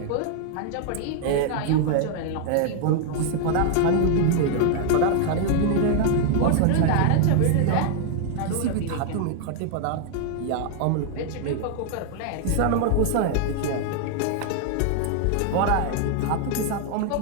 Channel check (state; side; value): different; both; correlation 0.00